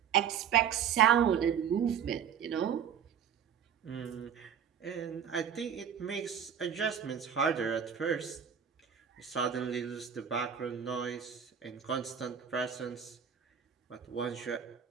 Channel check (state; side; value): quieter; left; 8.0 dB